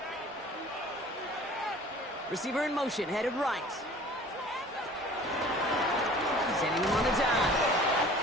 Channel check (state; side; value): normal; both; correlation 0.47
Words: Receiver in motion, headed right. Sending him on the dive.